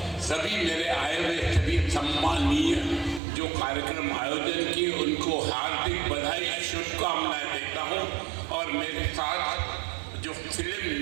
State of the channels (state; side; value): drops out; left; at 3.2 s